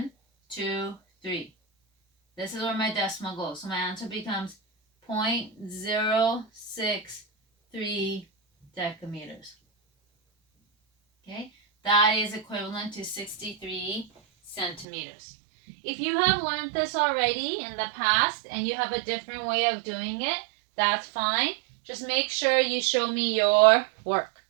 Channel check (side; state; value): left; drops out; at 14.9 s